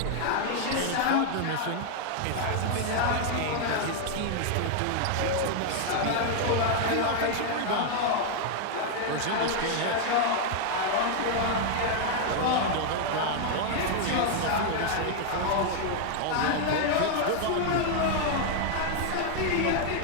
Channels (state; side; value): different; both; correlation 0.00